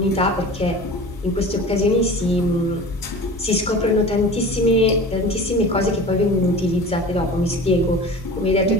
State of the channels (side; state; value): both; normal; correlation 0.38